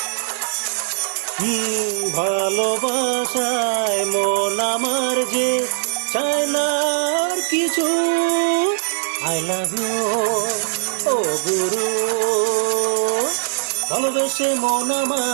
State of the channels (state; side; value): silent; left; digital silence